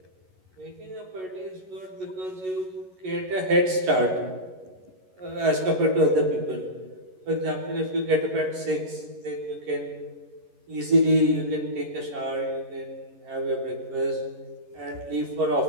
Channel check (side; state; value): left; late; 11 ms